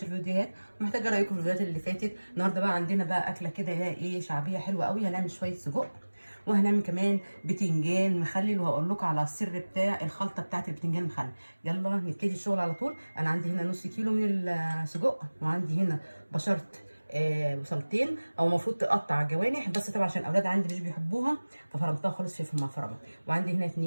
فيديوهات. محتاجه رايكم في الفيديوهات اللي فاتت. النهارده بقى عندنا بقى اكله كده ايه شعبيه حلوه قوي. هنعمل شويه سجق وهنعمل كمان بتنجان مخلل، وهقول لكم على السر بتاع الخلطه بتاعت البتنجان المخلل. يلا نبتدي الشغل على طول. انا عندي هنا نص كيلو من السجق، وعندي هنا بشرت بصلتين او المفروض تقطع جوانح، بس طبعا عشان الاولاد عندي مش بيحبوها ففرمتها خالص فلفل مع فرمه. وعندي هنا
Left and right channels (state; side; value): inverted; both; correlation -1.00